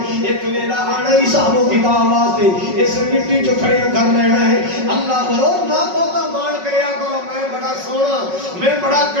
ایک ویلا آنا ہی حساب و کتاب واسطے اسے مٹی چوں کھڑے کر لینا ہے اللہ بولو نہ بہتا مان کریا کرو میں بڑا سونا میں بڑا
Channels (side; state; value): left; late; 5.4 ms